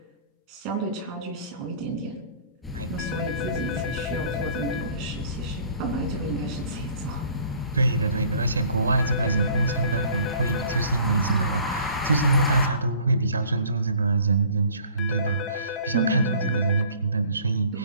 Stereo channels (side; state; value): both; inverted; correlation -0.51